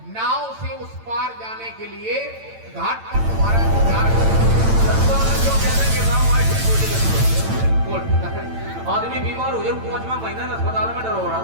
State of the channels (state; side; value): late; left; 8.9 ms